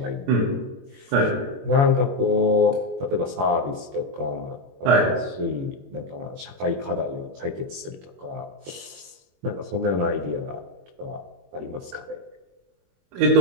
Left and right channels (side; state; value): left; late; 21 ms